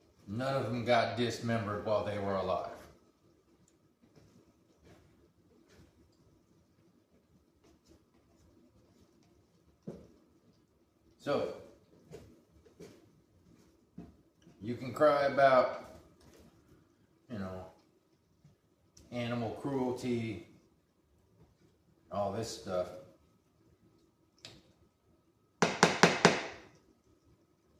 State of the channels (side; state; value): both; identical; correlation 1.00